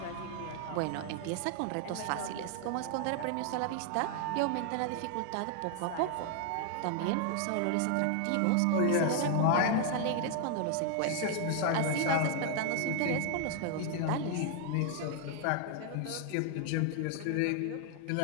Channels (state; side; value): different; both; correlation 0.00